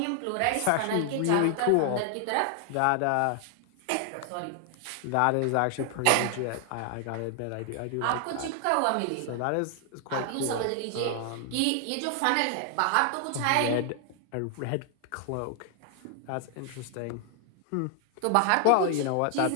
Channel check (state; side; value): different; both; correlation 0.00